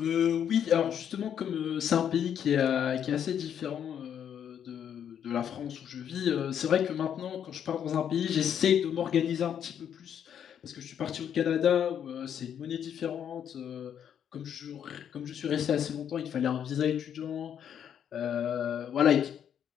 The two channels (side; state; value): right; quieter; 8.9 dB